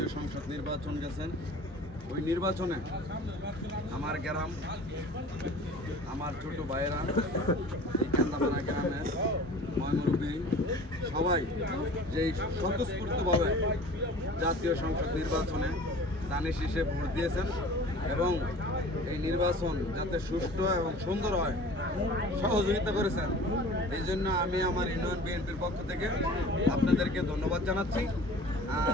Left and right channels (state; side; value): normal; both; correlation 0.43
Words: সংসদ নির্বাচন গেছেন, ওই নির্বাচনে আমার গ্রাম, আমার ছোট ভাইয়েরা, এই কান্দাপাড়া গ্রামের ময়মুরব্বী সবাই যেই স্বতঃস্ফূর্তভাবে জাতীয় সংসদ নির্বাচনে দানে শীষে ভোট দিয়েছেন এবং এই নির্বাচন যাতে সুষ্ঠু এবং সুন্দর হয় সহযোগিতা করেছেন, এই জন্য আমি আমার ইউনিয়ন বিএনপির পক্ষ থেকে আপনাদেরকে ধন্যবাদ জানাচ্ছি।